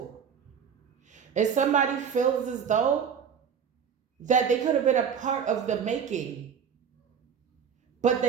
And somebody feels as though that they could have been a part of the making, but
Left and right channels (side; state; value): left; quieter; 7.3 dB